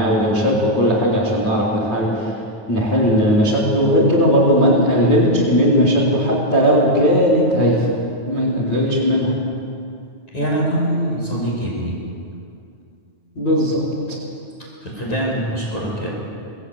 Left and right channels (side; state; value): right; late; 9.4 ms